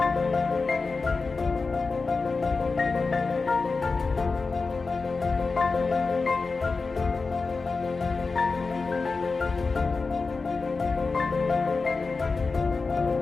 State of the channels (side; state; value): right; quieter; 4.2 dB